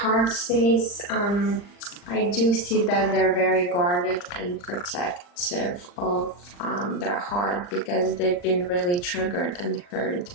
space, I do see that they're very guarded and protective of their heart, because they've been really triggered and hurt.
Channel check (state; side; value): late; right; 40 ms